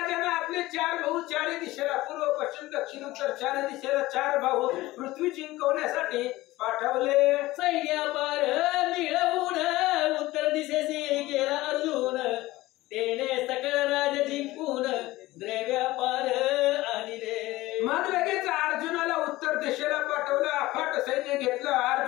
आपले 4 भाऊ 4 दिशेला पूर्व पश्चिम दक्षिण उत्तर 4 दिशेला 4 भाऊ पृथ्वी जिंकवण्यासाठी पाठवले. सैन्यापार मिळवून उत्तर दिशेशी गेला अर्जुन तेने सकळ राज जिंकून द्रव्यापार आणले. मग लगेच अर्जुनाला उत्तर दिशेला पाठवलं, अफाट सैन्य घेतलं.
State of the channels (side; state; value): right; quieter; 18.2 dB